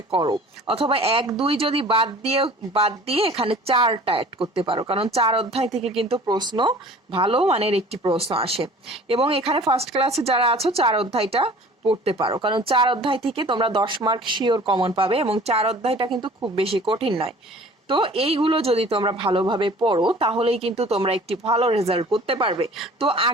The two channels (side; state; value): both; normal; correlation 0.47